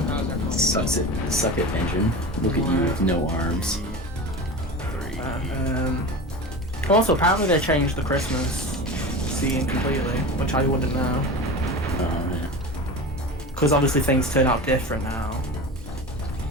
how's our Suck it, engine. Look at you with no arms. 3. Also, apparently they changed the Christmas scene completely, which I wouldn't know. Oh man. Because obviously things turn out different now.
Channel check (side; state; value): both; normal; correlation 0.29